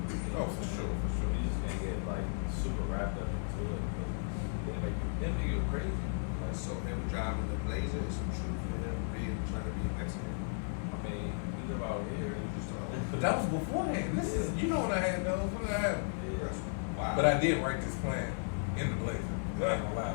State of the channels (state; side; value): silent; right; 54 dB below the other